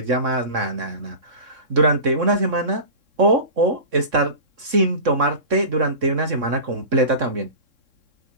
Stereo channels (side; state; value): left; late; 3.7 ms